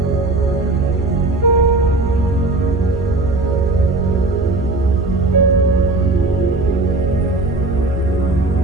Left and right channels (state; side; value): quieter; left; 3.1 dB